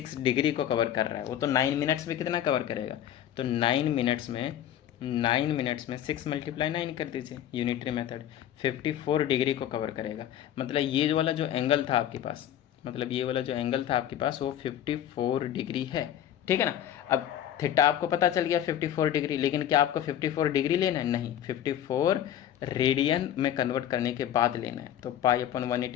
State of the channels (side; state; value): right; quieter; 10.9 dB